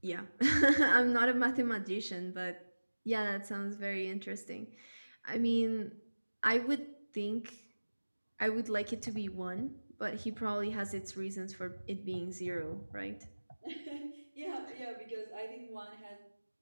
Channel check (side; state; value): both; inverted; correlation -1.00